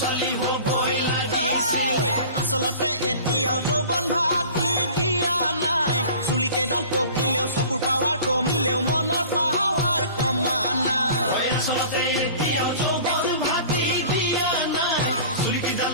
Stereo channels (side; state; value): both; inverted; correlation -0.43